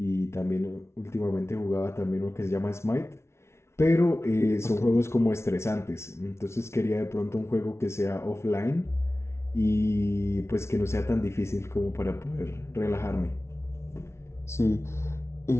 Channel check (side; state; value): right; late; 0.13 ms